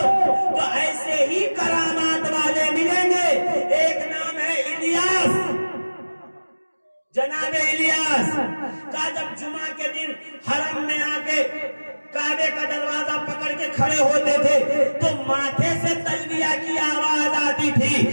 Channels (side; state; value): both; inverted; correlation -1.00